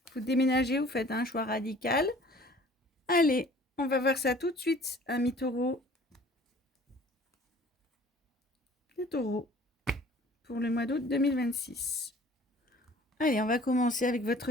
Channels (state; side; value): normal; both; correlation 0.50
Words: vous déménagez, vous faites un choix radical. Allez, on va voir ça tout de suite, amis taureaux. Les taureaux pour le mois d'août 2026. Allez, on va commencer avec